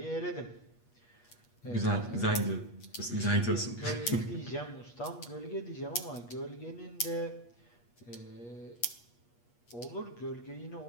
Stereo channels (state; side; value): late; right; 8.4 ms